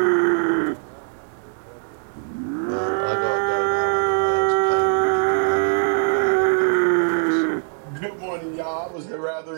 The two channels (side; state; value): left; silent; 61 dB below the other